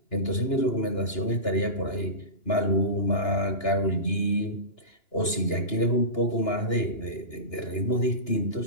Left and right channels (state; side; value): late; right; 2.9 ms